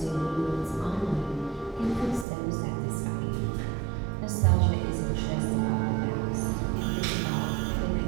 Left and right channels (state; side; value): drops out; left; at 2.2 s